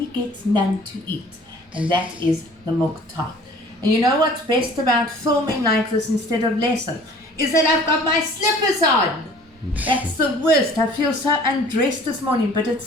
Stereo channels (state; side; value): normal; both; correlation 0.50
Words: gets none to eat, and that is the milk tart. And you know what's best about filming like this instead of lesson? Is that I've got my slippers on. That's the worst. I feel so undressed this morning, but it's